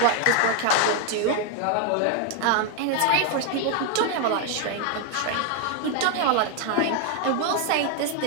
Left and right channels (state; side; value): different; both; correlation 0.00